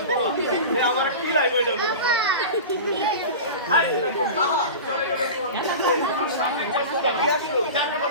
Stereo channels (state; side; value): inverted; both; correlation -0.30